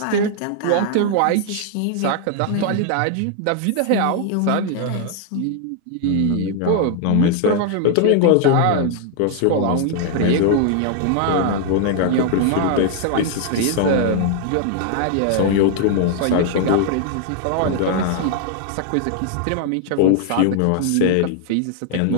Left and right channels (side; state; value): both; different; correlation 0.00